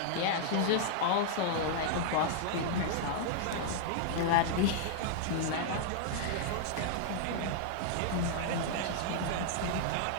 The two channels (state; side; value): different; both; correlation -0.01